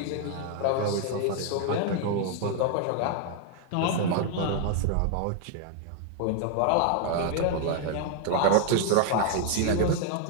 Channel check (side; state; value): both; different; correlation 0.01